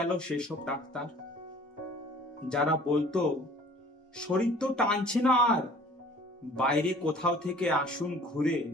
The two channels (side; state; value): both; normal; correlation 0.50